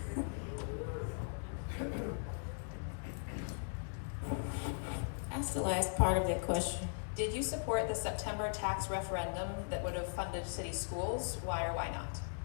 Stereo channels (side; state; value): right; silent; digital silence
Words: That's the last part of that question. Did you support the September tax referendum that would have funded city schools? Why or why not?